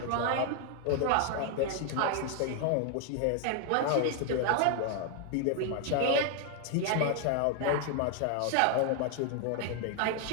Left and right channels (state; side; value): different; both; correlation 0.00